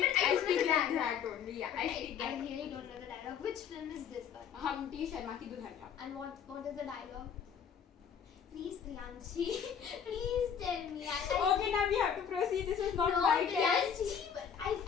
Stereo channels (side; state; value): right; quieter; 7.7 dB